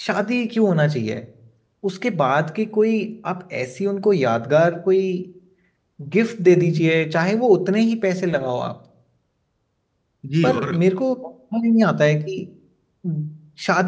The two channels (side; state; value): both; identical; correlation 1.00